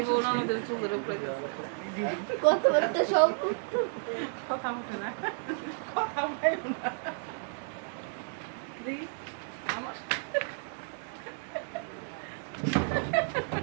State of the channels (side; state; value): left; silent; 57 dB below the other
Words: বোন আমাদের চুলের উপরে গেছে কথাবার্তা সব কথা উঠে না কথা উঠে না দেখি আমার